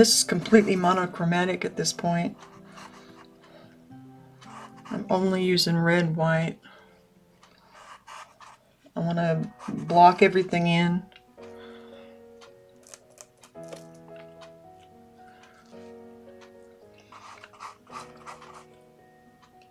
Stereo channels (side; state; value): both; identical; correlation 1.00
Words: is completely monochromatic at this point. I'm only using red, white. I want to block everything in.